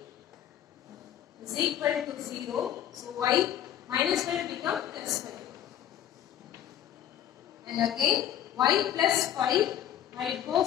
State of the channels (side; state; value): right; quieter; 10.9 dB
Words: is equal to 0. So y minus 5 becomes plus 5. And again y plus 5, when it